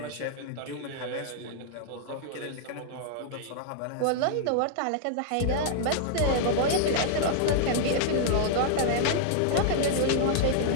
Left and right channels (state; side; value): different; both; correlation -0.01